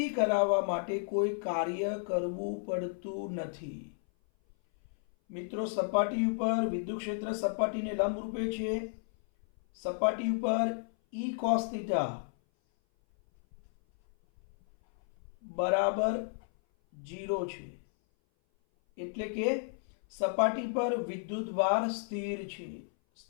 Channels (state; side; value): silent; right; 56 dB below the other